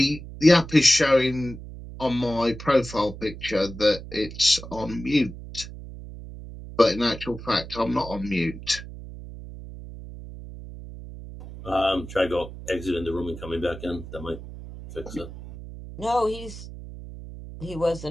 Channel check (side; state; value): right; noise; hum, 13 dB below the sound